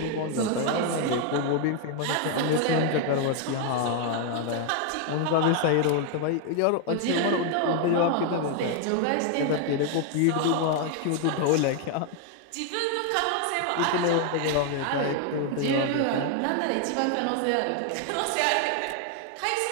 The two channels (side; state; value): both; different; correlation 0.00